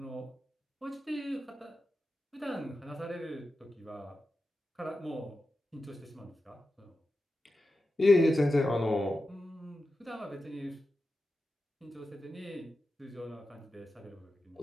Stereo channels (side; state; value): both; normal; correlation 0.91